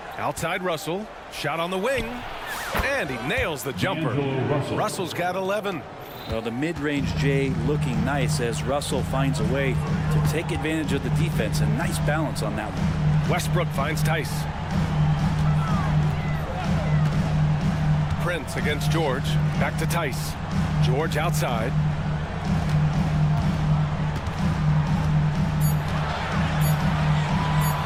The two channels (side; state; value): both; identical; correlation 1.00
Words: Outside Russell. Shot on the wing. And he nails the jumper. Russell's got 11. Well, the mid-range Jay looking nice as Russell finds a way to take advantage of the defense. A nice balance on that one. Westbrook finds Tice. Prince against George. Back to Tice. George outside.